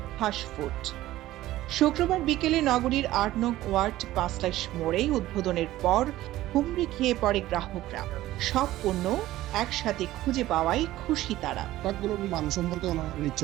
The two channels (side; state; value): left; quieter; 15.5 dB